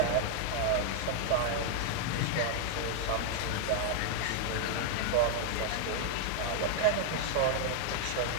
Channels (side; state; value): both; different; correlation 0.00